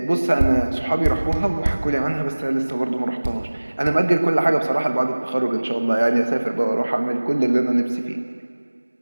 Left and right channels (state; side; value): inverted; both; correlation -1.00